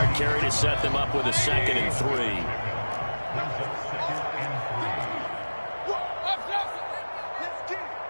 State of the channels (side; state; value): both; inverted; correlation -1.00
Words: carry to set them up with a 2nd and 3.